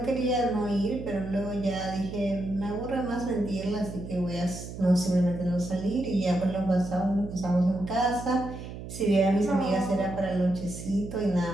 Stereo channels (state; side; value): noise; right; hum, 10 dB below the sound